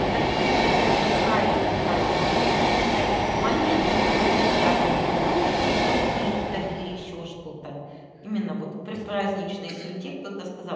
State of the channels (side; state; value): both; identical; correlation 1.00